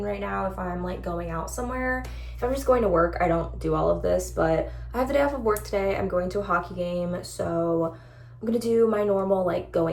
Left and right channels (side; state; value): both; identical; correlation 1.00